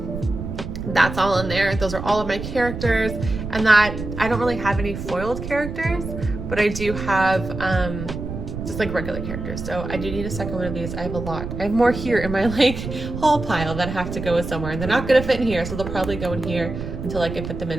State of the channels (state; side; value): noise; right; rumble, 7 dB below the sound